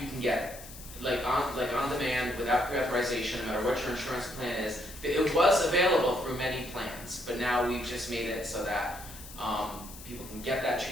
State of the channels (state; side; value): noise; left; hiss, 15 dB below the sound